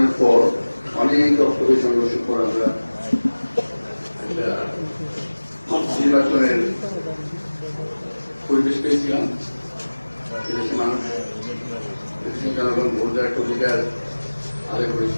পর অনেক রক্তকে সংঘর্ষের পর আমরা একটা নির্বাচনের পরিবেশ পেয়েছিলাম। এদেশে মানুষ, দেশের জনগণ ভোট দেওয়ার একটা অধিকার আদায়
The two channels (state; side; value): inverted; both; correlation -1.00